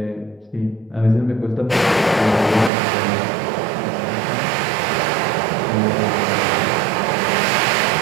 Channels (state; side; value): drops out; left; at 2.7 s